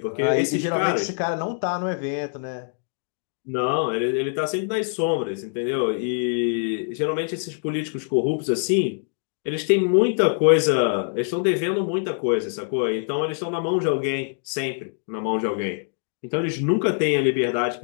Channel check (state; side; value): silent; right; digital silence